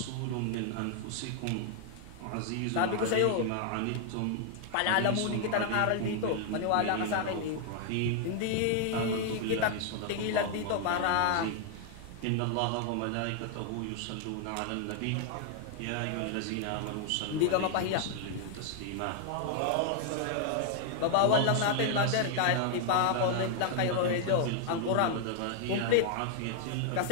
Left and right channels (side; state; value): both; different; correlation 0.00